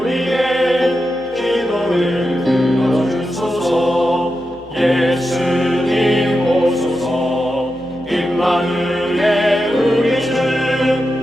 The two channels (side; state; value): both; normal; correlation 0.89